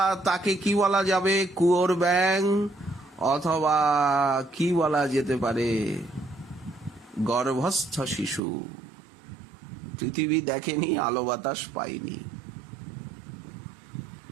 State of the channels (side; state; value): left; drops out; at 8.4 s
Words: তাকে কি বলা যাবে, কুয়োর ব্যাং, অথবা কি বলা যেতে পারে, গর্ভস্থ শিশু, পৃথিবী দেখেনি, আলো বাতাস পায়নি,